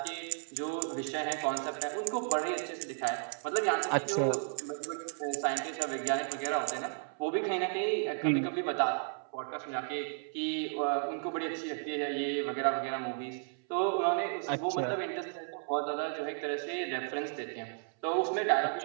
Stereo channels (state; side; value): silent; left; 55 dB below the other